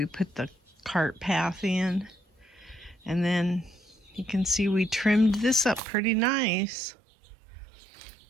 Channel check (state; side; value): drops out; left; at 5.8 s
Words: put the cart path in. And then you can see we trimmed this up pretty nice.